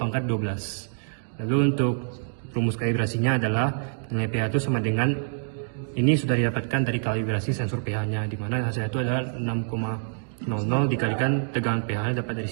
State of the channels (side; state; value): left; silent; digital silence